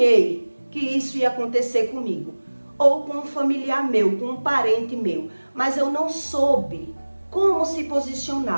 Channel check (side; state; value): both; inverted; correlation -1.00